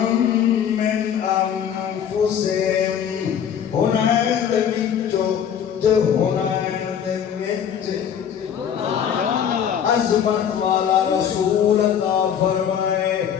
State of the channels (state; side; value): quieter; right; 8.6 dB